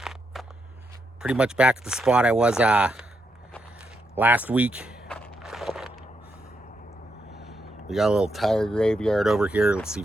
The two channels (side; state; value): both; normal; correlation 0.81